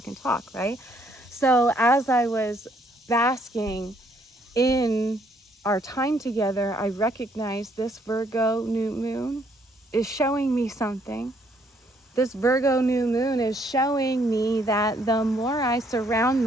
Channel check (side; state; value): both; normal; correlation 0.68